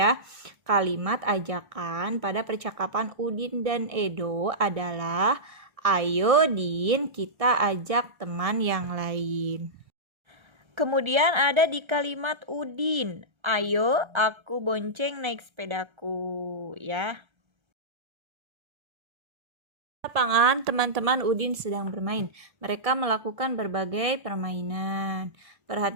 Kalimat ajakan pada percakapan Udin dan Edo adalah ayo Din, kita ajak teman yang lain. Kemudian ada di kalimat Udin, ayo aku bonceng naik sepedaku ya. Lapangan, teman-teman Udin sedang bermain. Mereka melakukan berbagai permainan.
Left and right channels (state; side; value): late; left; 1.3 ms